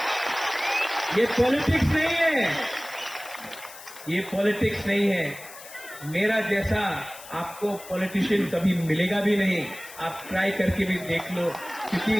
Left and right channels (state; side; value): noise; left; hiss, 16 dB below the sound